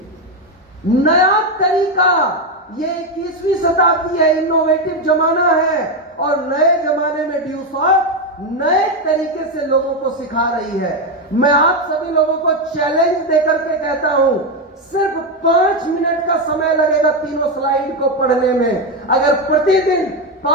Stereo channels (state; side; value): normal; both; correlation 0.08